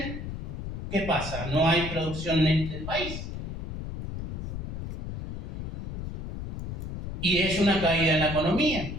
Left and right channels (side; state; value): left; noise; rumble, 5 dB below the sound